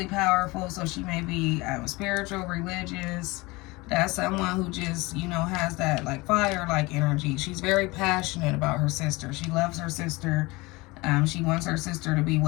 powerful. So she may be spiritual, religious. That's someone who just, has that like fire-like energy. She's very passionate about her sister. She loves her sister. She wants her sister to be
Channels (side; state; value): right; quieter; 23.2 dB